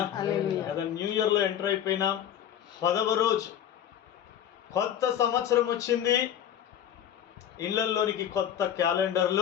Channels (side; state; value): right; quieter; 10.1 dB